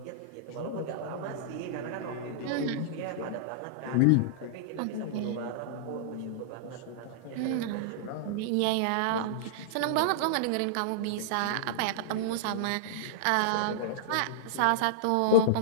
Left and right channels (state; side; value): different; both; correlation -0.02